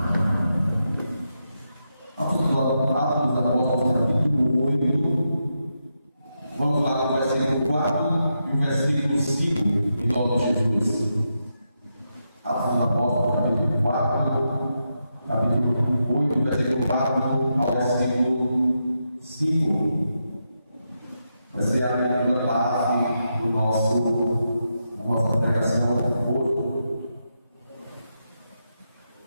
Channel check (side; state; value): both; inverted; correlation -0.85